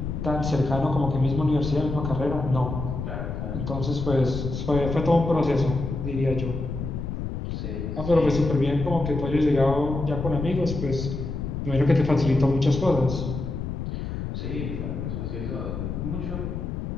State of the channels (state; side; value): noise; left; rumble, 5 dB below the sound